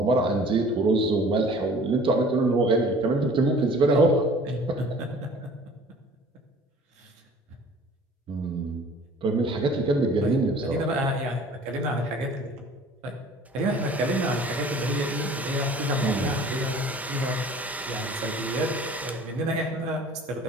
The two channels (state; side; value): normal; both; correlation 0.48